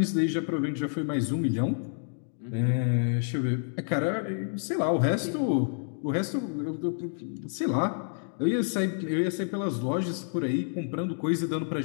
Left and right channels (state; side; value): silent; right; digital silence